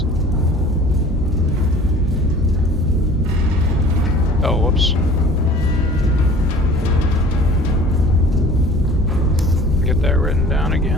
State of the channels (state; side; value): normal; both; correlation 0.46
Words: Oh, whoops. Get that written down